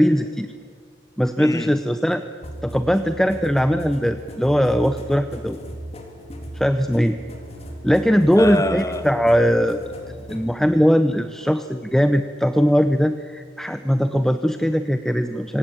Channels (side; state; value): both; normal; correlation 0.95